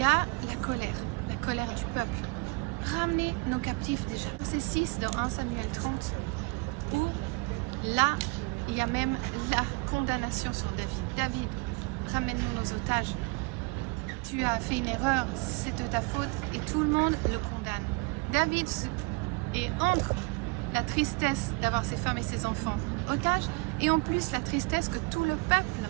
a la colère du peuple. Ramener nos captifs déjà. C'est 6 de 1 Samuel 30. Là, il y a même la condamnation sur David. David, ramène-nous nos otages. Tu as fait une erreur, c'est de ta faute et tout le monde le condamne. David est entre la tristesse d'avoir ses femmes et ses enfants otages et en plus la tristesse que tout le peuple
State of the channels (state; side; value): quieter; left; 28.7 dB